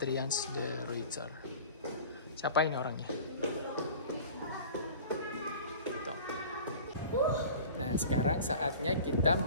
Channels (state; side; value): inverted; both; correlation -0.41